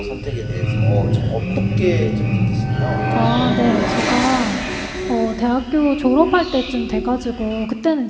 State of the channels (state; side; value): identical; both; correlation 1.00